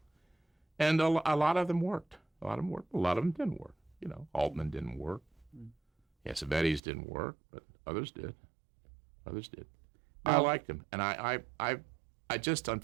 And a lot of them worked. A lot of them didn't work. You know, Altman didn't work. Cassavetes didn't work, but others did. I liked him, and I just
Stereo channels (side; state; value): left; drops out; at 6.8 s